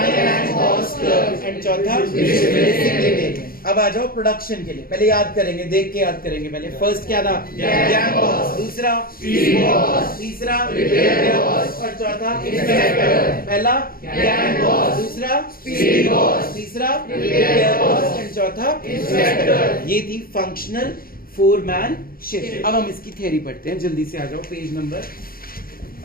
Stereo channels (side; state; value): right; late; 0.42 ms